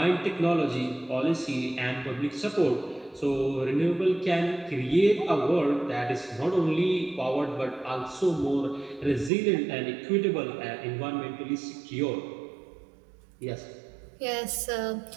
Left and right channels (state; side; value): drops out; left; at 9.3 s